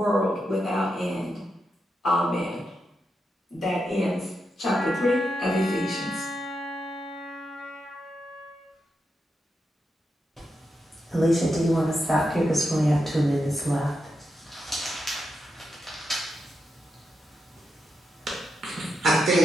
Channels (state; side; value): normal; both; correlation 0.86